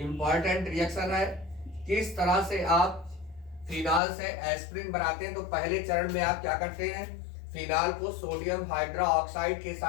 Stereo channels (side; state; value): right; drops out; at 4.0 s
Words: रिएक्शन है। किस तरह से आप फिनॉल से एस्प्रिन बनाते हैं, तो पहले चरण में आप क्या करते हैं, फिनॉल को सोडियम हाइड्रोक्साइड के